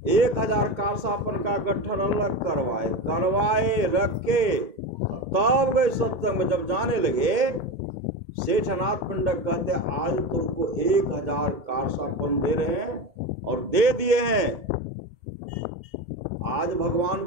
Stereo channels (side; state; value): left; late; 2.2 ms